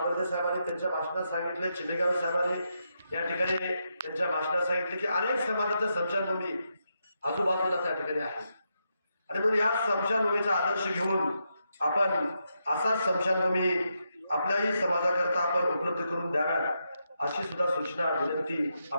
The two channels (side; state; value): both; inverted; correlation -0.83